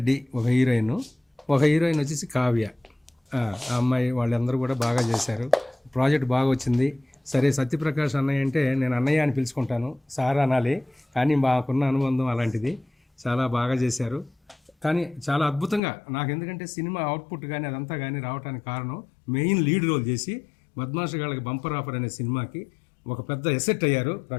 ఒక హీరోయిన్, ఒక హీరోయిన్ వచ్చేసి కావ్య. ఆ అమ్మాయి వాళ్ళందరూ కూడా బాగా చేశారు, ప్రాజెక్ట్ బాగా వచ్చింది. సరే సత్యప్రకాష్ అన్నయ్య అంటే నేను అన్నయ్య అని పిలుచుకుంటాను, సార్ అనాలి, కానీ మాకున్న అనుబంధం అలాంటిది. చాలా బాగా చేశారు, కానీ చాలా అద్భుతంగా నాకు, ఎందుకంటే సినిమా అవుట్పుట్ కానీ అదంతా కానీ రావడానికి కారణం మెయిన్ లీడ్ రోల్ చేసి బద్మాష్ గాళ్ళకి బంపర్ ఆఫర్ అనే సినిమాకి ఒక పెద్ద ఎసెట్ అయ్యారు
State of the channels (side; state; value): right; drops out; at 15.8 s